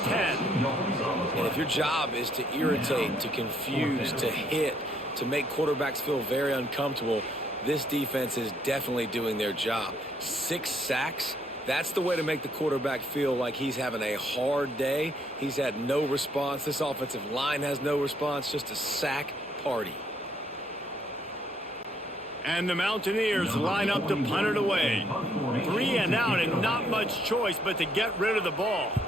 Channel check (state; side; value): normal; both; correlation 0.69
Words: 10. And if your job is to irritate, to confuse, to hit, to make quarterbacks feel very uncomfortable, this defense is definitely doing their job. 6 sacks, that's the way to make the quarterback feel like he's having a hard day. He's had no response. This offensive line has no response, just a sack party. And the Mountaineers line up to punt it away. 3 and out and not much choice but to get rid of the ball.